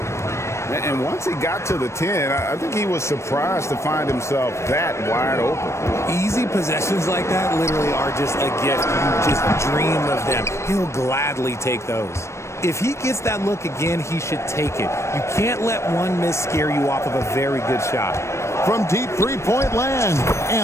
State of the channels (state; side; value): late; right; 0.13 ms